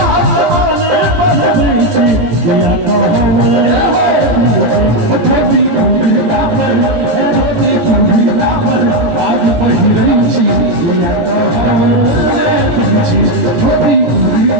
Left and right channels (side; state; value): left; late; 17 ms